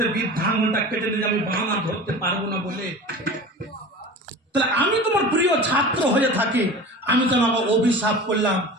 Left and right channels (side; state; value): both; normal; correlation 0.35